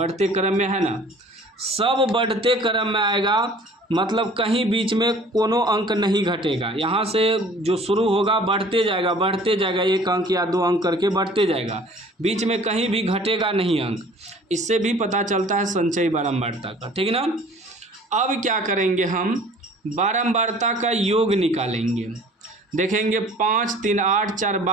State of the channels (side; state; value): both; normal; correlation 0.50